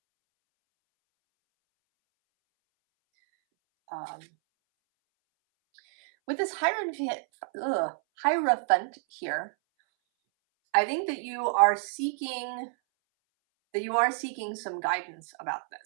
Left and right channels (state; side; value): silent; left; 59 dB below the other